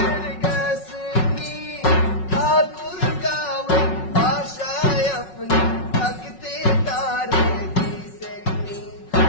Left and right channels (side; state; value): right; late; 5.4 ms